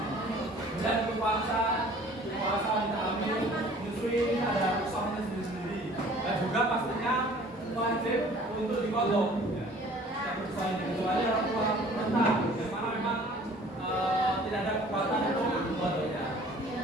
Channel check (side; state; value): both; normal; correlation 0.51